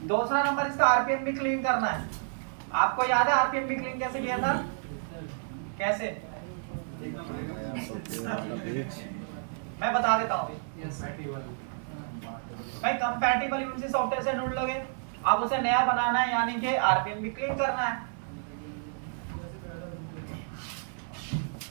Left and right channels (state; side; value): silent; left; 58 dB below the other